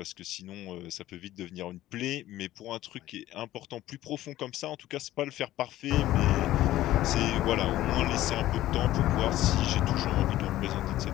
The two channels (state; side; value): quieter; right; 14.7 dB